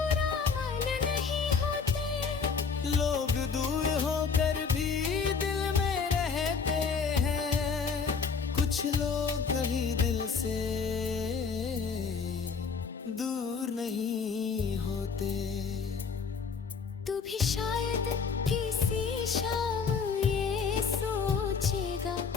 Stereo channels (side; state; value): right; quieter; 5.6 dB